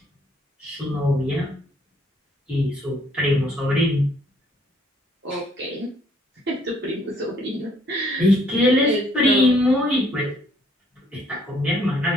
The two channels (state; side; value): normal; both; correlation 0.65